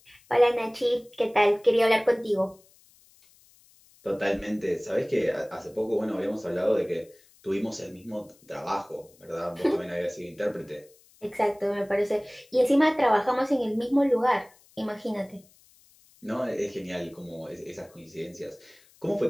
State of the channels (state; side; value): noise; left; hiss, 29 dB below the sound